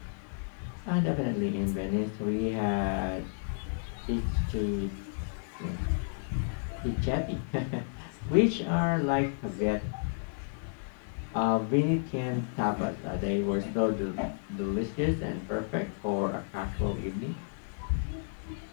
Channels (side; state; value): right; silent; digital silence